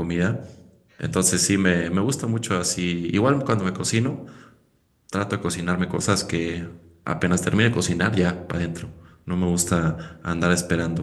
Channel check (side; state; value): both; identical; correlation 1.00